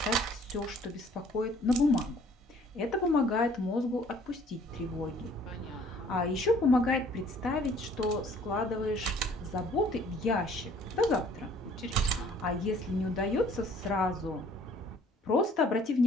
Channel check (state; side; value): normal; both; correlation 0.56